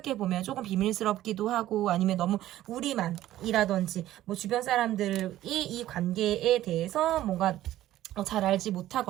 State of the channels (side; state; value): left; quieter; 14.0 dB